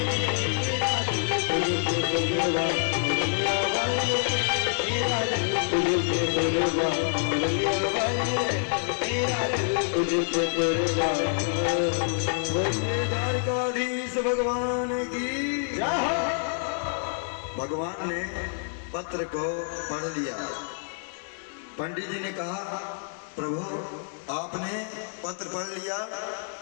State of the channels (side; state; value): right; silent; 60 dB below the other